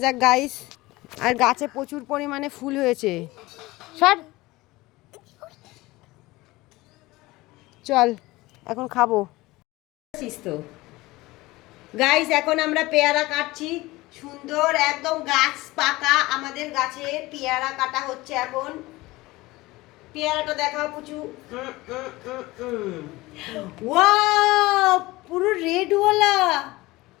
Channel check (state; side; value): quieter; right; 20.1 dB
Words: যাক গাইস। আর গাছে প্রচুর পরিমাণে ফুল হয়েছে। সর চল এখন খাবো। তো গাইস এখন আমরা পেয়ারা কাটছি সুন্দর একদম গাছ পাকা আমাদের গাছে পেয়ারা কাটা হচ্ছে এখন। পেয়ারাটা দেখাও পুচু। ওয়াও পুরো রেডওয়ালা